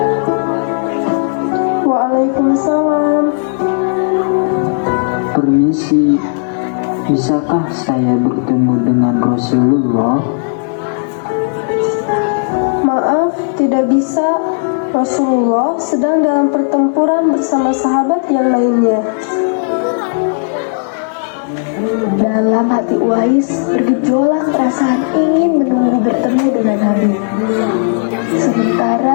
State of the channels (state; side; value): silent; right; digital silence